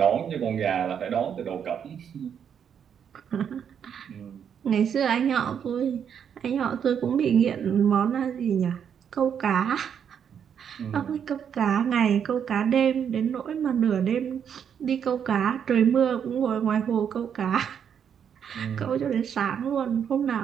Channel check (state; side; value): quieter; left; 8.1 dB